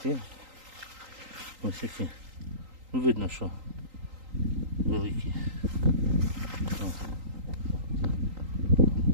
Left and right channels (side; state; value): left; late; 3.8 ms